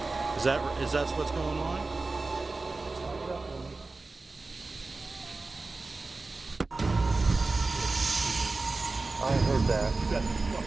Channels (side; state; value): left; quieter; 3.5 dB